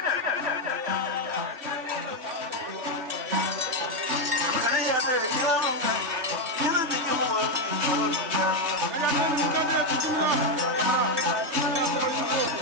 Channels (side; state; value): left; late; 3.2 ms